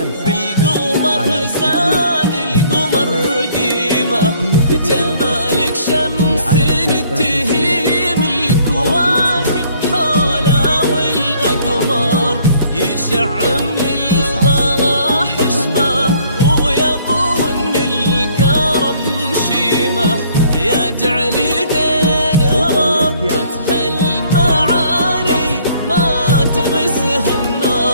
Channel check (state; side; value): inverted; both; correlation -0.60